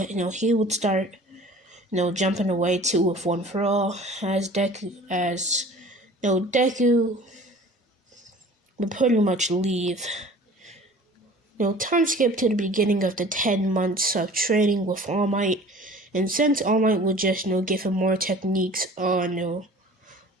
he would start jumping away too with One for All, as Deku would pretty much leave. Time skip to the beginning of the 10 months of training with All Might, and since All Might would just give him more techniques on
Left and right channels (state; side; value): normal; both; correlation 0.45